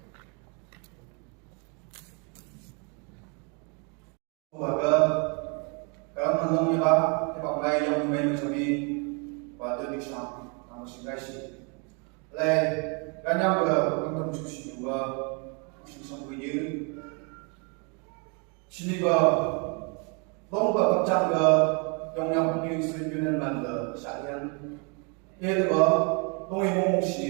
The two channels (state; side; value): quieter; left; 34.9 dB